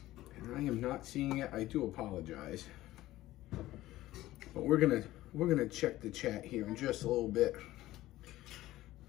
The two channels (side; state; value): right; quieter; 16.0 dB